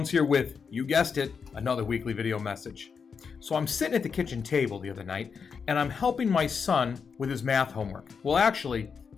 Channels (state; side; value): quieter; right; 6.0 dB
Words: here with, you guessed it, another weekly video message. So I'm sitting at the kitchen table the other night and I'm helping my son with his math homework. Well, actually,